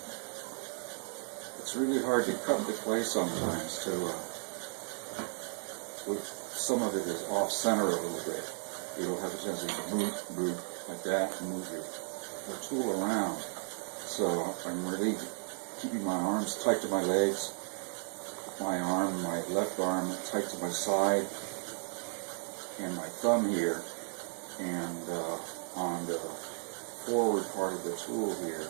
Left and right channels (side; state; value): left; silent; 55 dB below the other